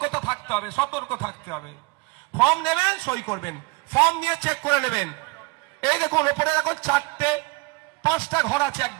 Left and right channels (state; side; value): quieter; left; 26.9 dB